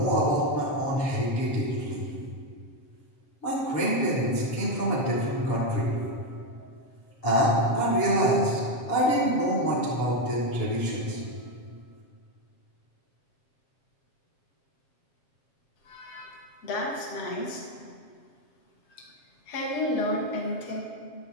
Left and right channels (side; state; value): right; late; 7.5 ms